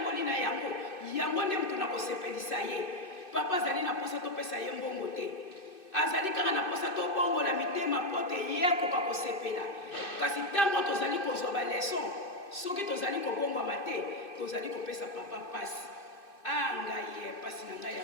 na yango nde mutu na kosepelisa ye papa azali na posa topesa ye mbongo te azali kaka na posa tobongola mitema pote ye akoka kosepela kasi ntango tozali kozwa baleson soki tozali kobongwama te tozali kopesa papa pasi ngai ye pasi na ngai ya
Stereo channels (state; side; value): late; right; 2.6 ms